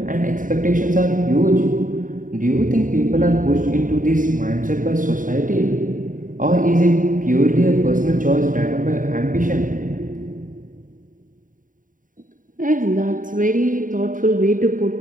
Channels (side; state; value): left; late; 0.39 ms